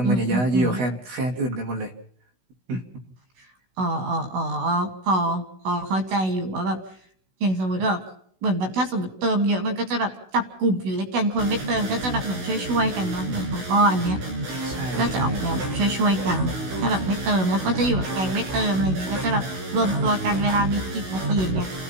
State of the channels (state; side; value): late; left; 16 ms